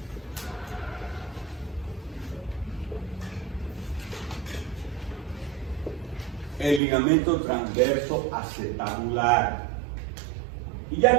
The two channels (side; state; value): left; drops out; at 6.8 s